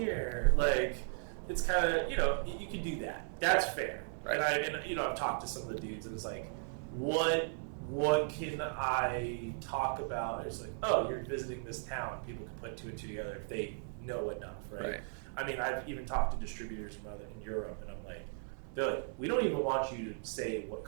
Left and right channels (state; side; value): silent; left; 53 dB below the other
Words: Like, it's kind of, you can do that. That's fair. Right. And I've talked to some of the dudes, and it's like, what can I talk about? It's like, oh, you're visiting this town. People can put two and two together if they know enough, right? I mean, I've even talked to distributors in Europe, and I'm like, they're like, we don't even want you to say what